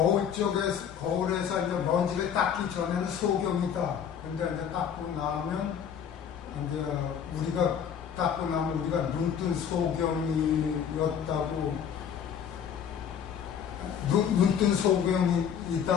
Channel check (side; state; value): right; quieter; 8.1 dB